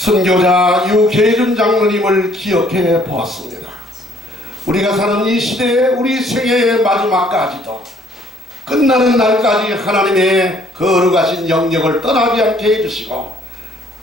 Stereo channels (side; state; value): both; normal; correlation 0.62